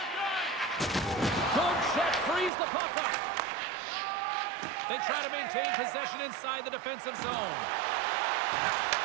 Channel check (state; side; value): drops out; left; at 2.5 s